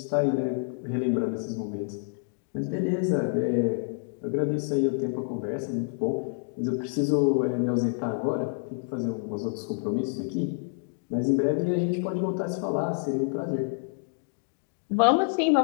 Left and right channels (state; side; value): silent; right; digital silence